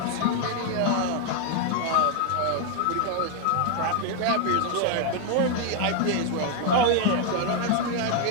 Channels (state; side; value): different; both; correlation 0.00